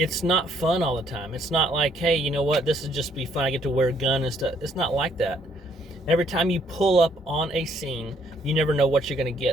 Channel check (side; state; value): both; normal; correlation 0.67